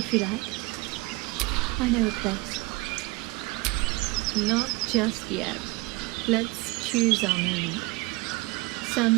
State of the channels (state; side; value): quieter; left; 23.3 dB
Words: you like. I know a place. Not just yet. Let's choose our moment.